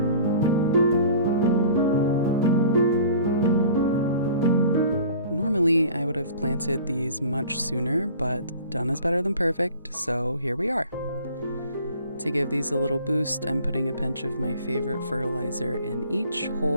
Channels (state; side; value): inverted; both; correlation -0.47